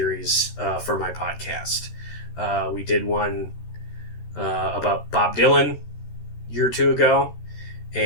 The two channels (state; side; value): late; right; 13 ms